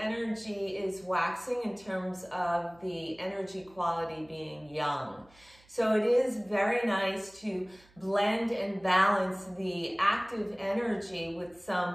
is waxing in terms of the energy quality being yang. So it is very nice to blend and balance the active energy with some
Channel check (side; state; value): right; noise; hum, 28 dB below the sound